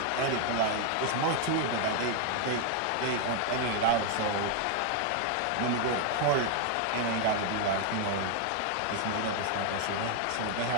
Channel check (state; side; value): different; both; correlation 0.00